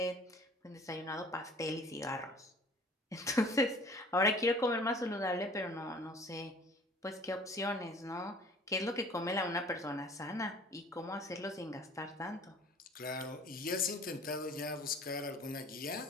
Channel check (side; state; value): both; normal; correlation 0.49